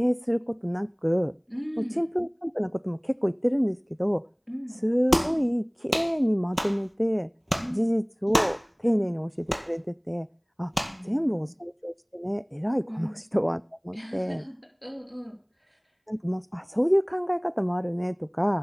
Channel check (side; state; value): both; identical; correlation 1.00